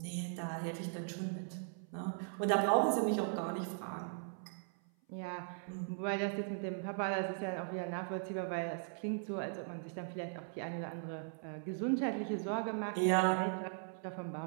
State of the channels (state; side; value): silent; left; 52 dB below the other